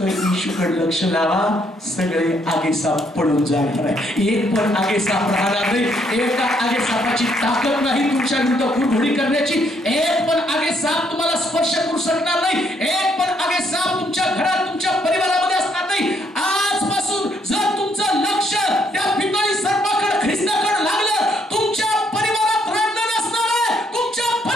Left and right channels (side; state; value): both; normal; correlation 0.71